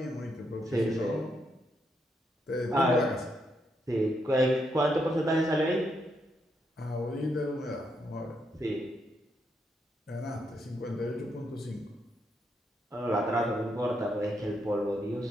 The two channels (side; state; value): both; normal; correlation 0.79